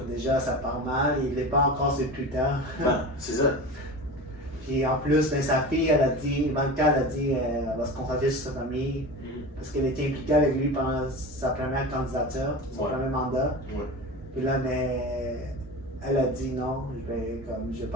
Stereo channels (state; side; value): normal; both; correlation 0.30